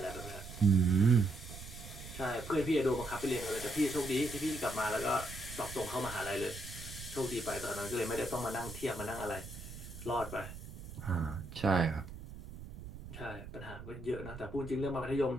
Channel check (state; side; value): noise; right; rumble, 12 dB below the sound